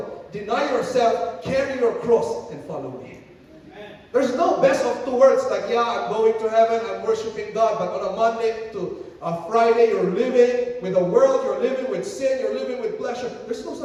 deny yourself, carry your cross, and follow me. There's no best of two worlds like, yeah, I'm going to heaven, I'm worshiping God, but on a Monday to a Friday, you're living with the world, you're living with sin, you're living with pleasure. There's no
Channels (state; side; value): identical; both; correlation 1.00